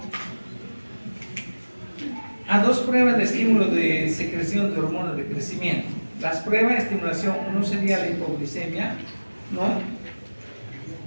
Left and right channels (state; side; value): inverted; both; correlation -1.00